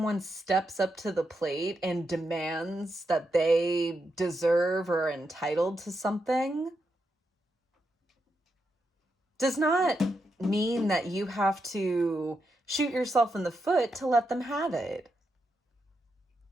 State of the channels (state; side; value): normal; both; correlation 0.84